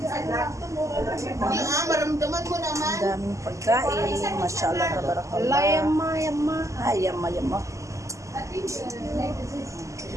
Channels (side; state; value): left; late; 0.15 ms